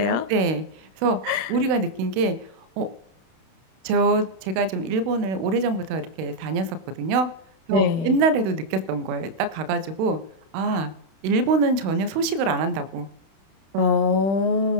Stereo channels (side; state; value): left; late; 32 ms